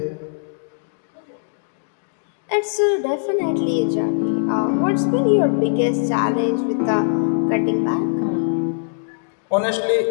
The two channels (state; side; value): silent; right; digital silence